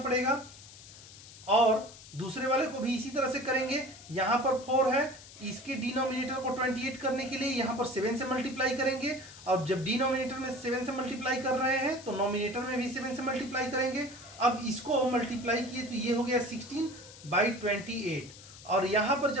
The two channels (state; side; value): noise; left; hiss, 18 dB below the sound